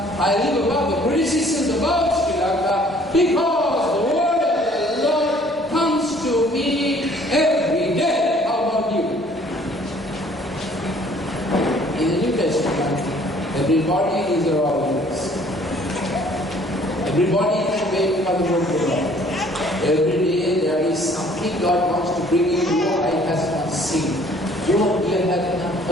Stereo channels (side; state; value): both; normal; correlation 0.57